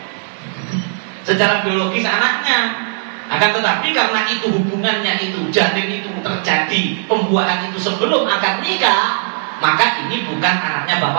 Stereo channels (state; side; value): silent; left; digital silence